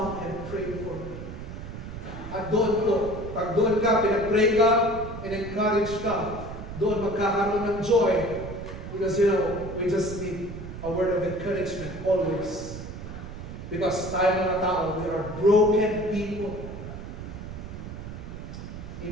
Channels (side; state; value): right; noise; rumble, 10 dB below the sound